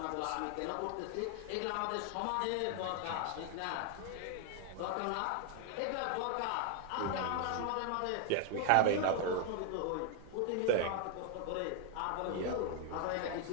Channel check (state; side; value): different; both; correlation 0.00